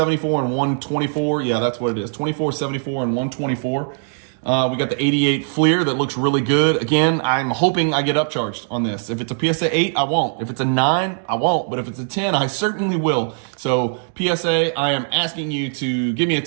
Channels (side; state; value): left; silent; digital silence